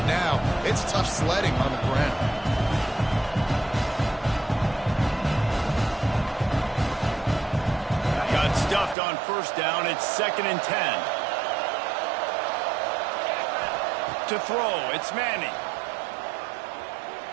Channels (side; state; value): left; drops out; at 9.0 s